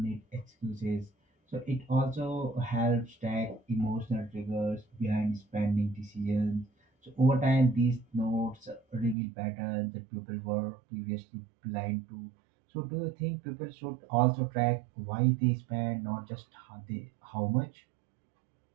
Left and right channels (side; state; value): left; drops out; at 9.2 s